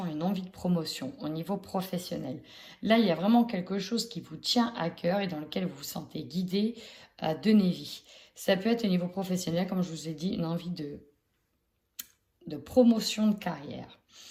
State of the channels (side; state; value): both; identical; correlation 1.00